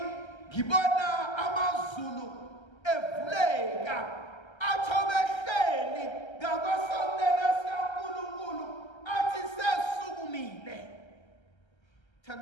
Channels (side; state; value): right; late; 1.3 ms